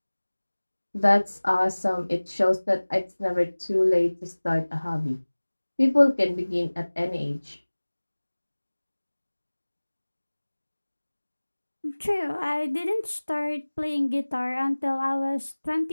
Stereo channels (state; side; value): inverted; both; correlation -1.00